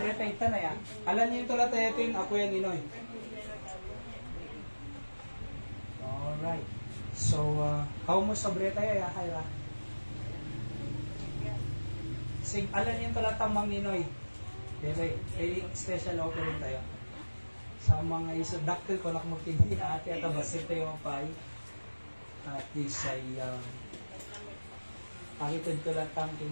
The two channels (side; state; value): both; inverted; correlation -1.00